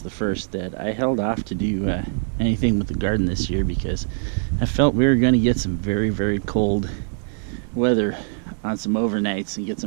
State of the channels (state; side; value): silent; left; 64 dB below the other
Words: the first, that I held off to do anything with the garden this year because I felt we were going to get some very, very cold weather on some overnights and get